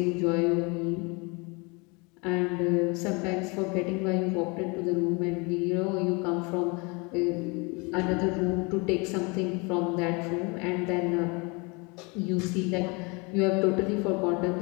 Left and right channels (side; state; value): right; quieter; 29.2 dB